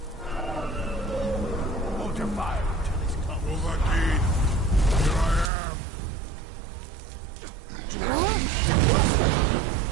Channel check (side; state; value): left; drops out; at 5.5 s